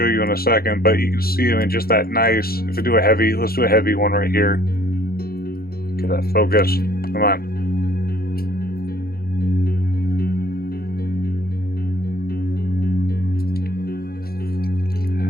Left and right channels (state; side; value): late; right; 0.44 ms